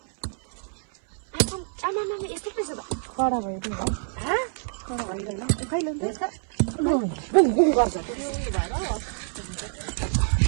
आमामा यस्तो रहेछ त कडा भयो त्यो कडा भइदैन खैले गर्छ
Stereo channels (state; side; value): silent; left; 57 dB below the other